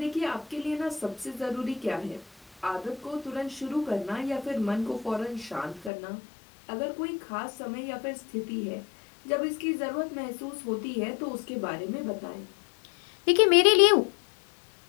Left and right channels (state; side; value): drops out; right; at 5.9 s